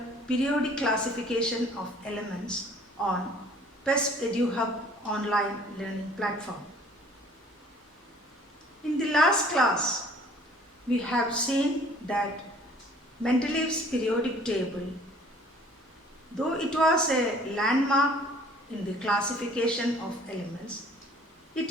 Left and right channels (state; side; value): normal; both; correlation 0.54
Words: Periodic Classification of Elements on PEST EduHub online learning platform. In the last class, we have seen that Mendeleev's periodic table, though it was a landmark in the classification of elements, it